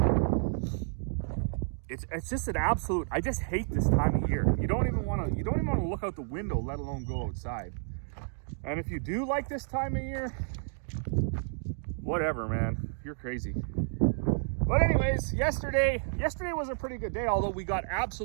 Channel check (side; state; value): left; silent; digital silence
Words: It's just an absolute. I just hate this time of year. You don't even want to look out the window, let alone go outside. And if you do like this time of year, whatever, man, you're crazy. But anyways, yesterday was a pretty good day, although we got